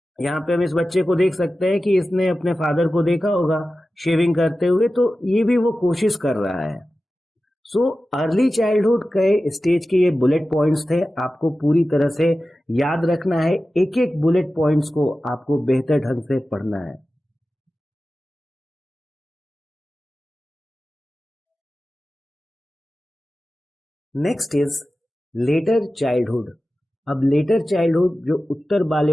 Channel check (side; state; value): both; normal; correlation 0.95